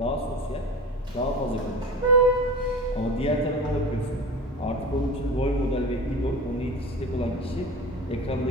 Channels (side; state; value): both; normal; correlation 0.33